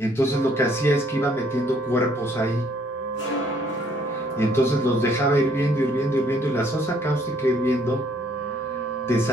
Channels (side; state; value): both; normal; correlation 0.64